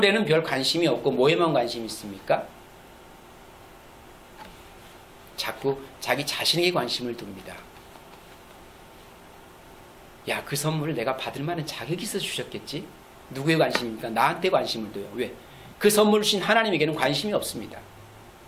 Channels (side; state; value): both; identical; correlation 1.00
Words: 별 관심이 없고 뭐에만 관심이 있습니까? 자꾸 자기 자신에게 관심을 둡니다. 야, 그 선물을 내가 받을 만한 자격이 있어 주셨겠지? 누구의 관심입니까? 나한테 관심을 둬요. 왜? 그 선물을 주신 하나님에게는 관심이 없습니다.